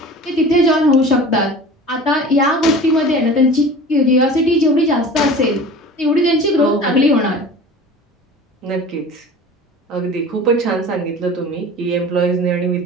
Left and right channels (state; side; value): normal; both; correlation 0.39